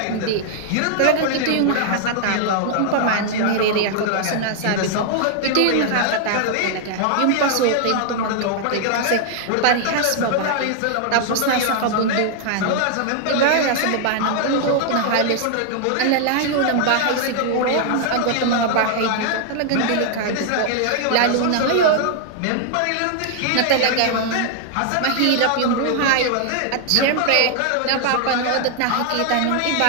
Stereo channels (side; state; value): both; different; correlation 0.00